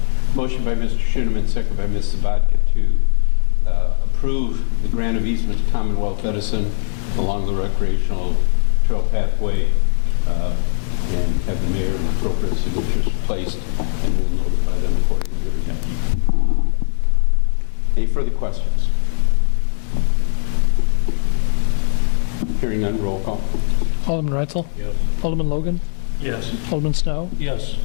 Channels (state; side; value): silent; right; 67 dB below the other